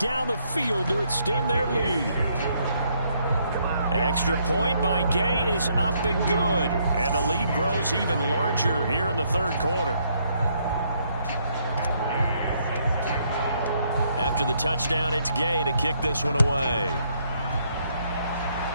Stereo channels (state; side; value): inverted; both; correlation -0.71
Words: the field to extend their lead. Extra point by Gay is up and good. And the lead grows even larger here in the third quarter. After the touchdown, it's Gay to kick this one away.